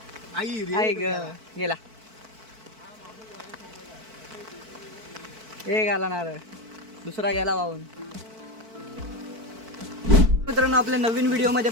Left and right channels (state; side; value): late; left; 4.5 ms